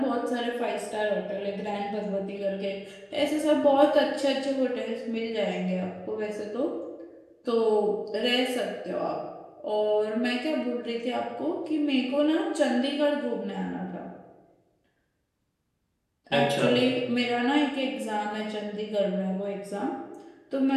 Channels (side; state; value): both; identical; correlation 1.00